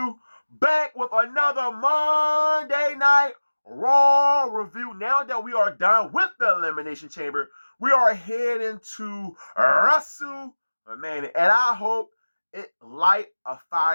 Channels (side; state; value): both; inverted; correlation -1.00